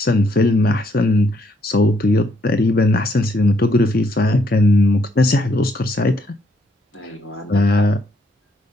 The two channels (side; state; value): both; normal; correlation 0.72